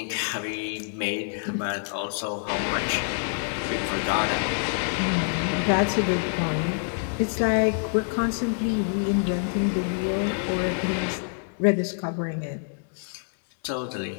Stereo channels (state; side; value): silent; right; 61 dB below the other